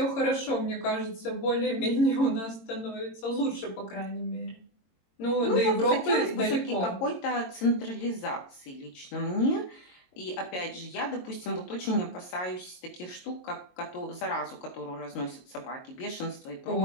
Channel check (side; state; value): right; late; 22 ms